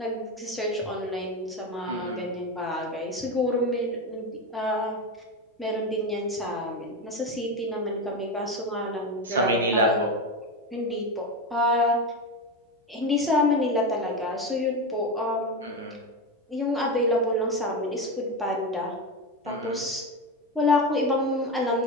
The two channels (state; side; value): normal; both; correlation 0.17